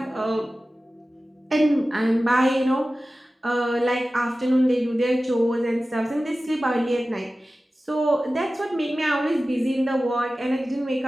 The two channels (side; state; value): both; normal; correlation 0.96